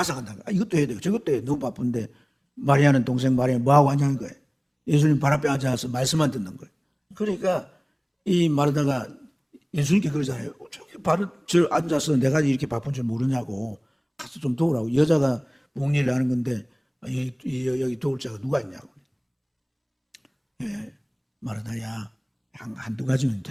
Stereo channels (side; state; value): both; identical; correlation 1.00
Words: 간다는 거예요. 이것도 해야 되고 저것도 해야 돼요. 너무 바쁜데 마리아는 동생 마리아 뭐하고 앉아있는 거예요? 예수님 발 앞에 앉아서 말씀만 듣는 거예요. 그러니까 이 마르다가 예수님께 그러잖아요. 저기 저 앉아서 내가 이렇게 바쁜 줄 모르냐고 가서 좀 도우라고. 여자가 목일을 하는 건데 여기 도울 자가 누가 있냐고. 예, 마르다야 한두 가지면